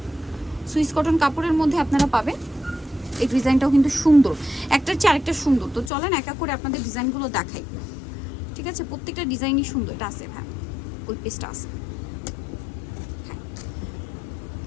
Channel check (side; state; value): right; drops out; at 5.9 s